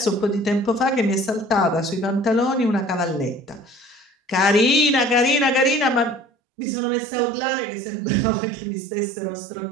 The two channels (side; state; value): left; drops out; at 6.2 s